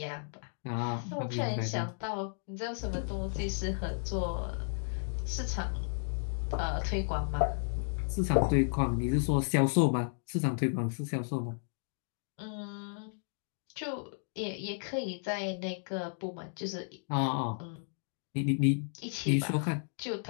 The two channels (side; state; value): right; silent; digital silence